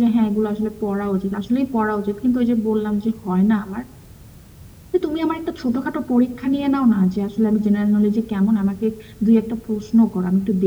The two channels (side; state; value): both; identical; correlation 1.00